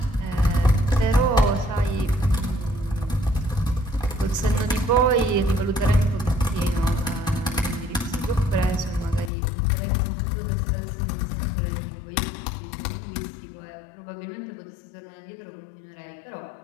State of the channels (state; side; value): drops out; right; at 9.3 s